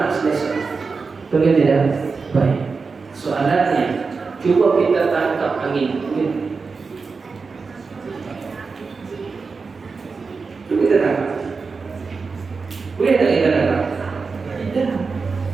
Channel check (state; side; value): quieter; left; 4.7 dB